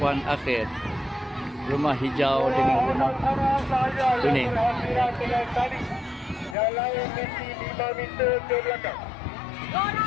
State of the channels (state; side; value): drops out; right; at 6.6 s